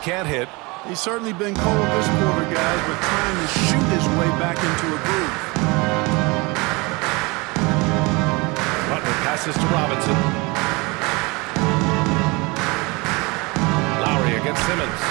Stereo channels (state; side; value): quieter; left; 25.9 dB